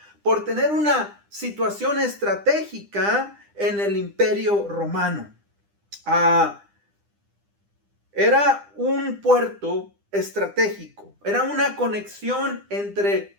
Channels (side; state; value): left; late; 9.9 ms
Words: por tener una situación estratégica en el Imperio Romano. Era un puerto estratégico, era una conexión entre